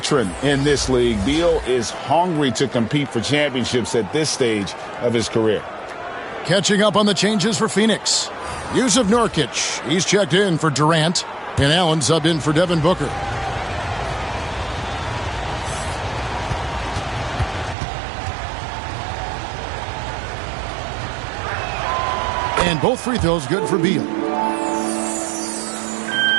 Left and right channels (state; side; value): drops out; left; at 17.8 s